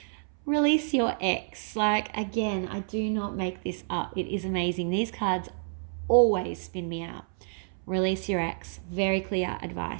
Release your ex. Like, again, I do not make this up. It is amazing. These cards always spin me out. Release your ex. Very clear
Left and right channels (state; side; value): silent; left; 57 dB below the other